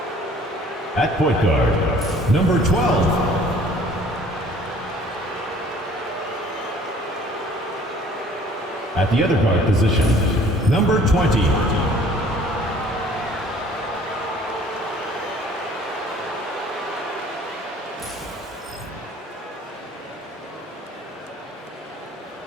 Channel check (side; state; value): both; normal; correlation 0.54